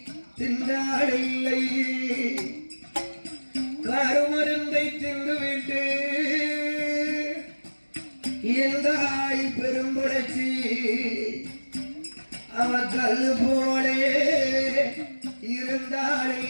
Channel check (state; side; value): inverted; both; correlation -1.00